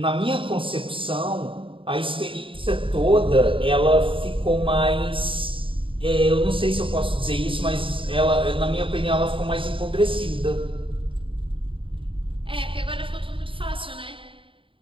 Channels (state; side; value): late; left; 0.25 ms